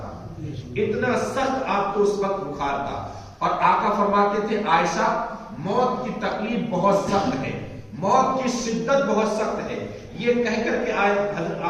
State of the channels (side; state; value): both; identical; correlation 1.00